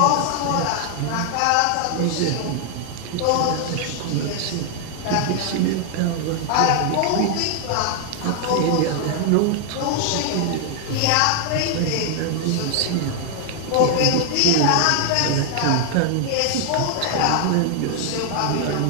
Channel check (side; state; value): both; different; correlation 0.00